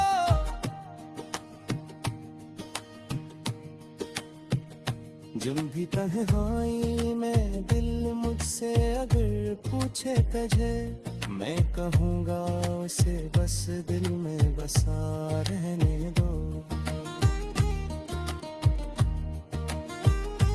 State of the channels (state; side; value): identical; both; correlation 1.00